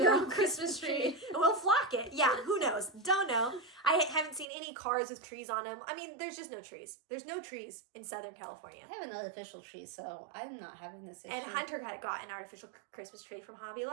your own Christmas tree. We'll flock it. Yeah, who knows? Don't know. I haven't seen any cars with trees on them. I mean, there's just no trees. There's no trees in Southern California. I have an artificial tree, so I'm not having this issue. And Hunter got an artificial Christmas tree from Hobby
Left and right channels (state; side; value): drops out; left; at 4.5 s